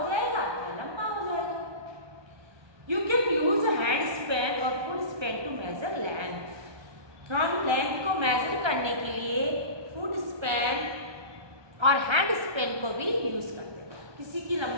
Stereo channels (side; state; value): left; late; 1.2 ms